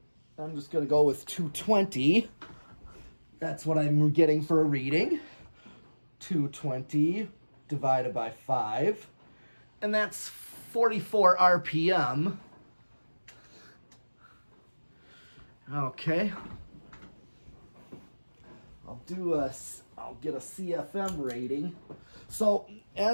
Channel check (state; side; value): inverted; both; correlation -1.00